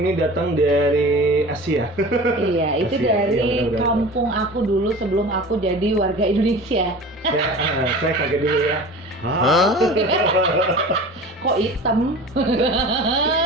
ini datang dari Asia. Iya, itu Asia. dari Iya, benar. kampung aku dulu sebelum aku jadi warga Indonesia. Saya kaget dulu ya. Hah? Kok hitam?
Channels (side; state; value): both; normal; correlation 0.37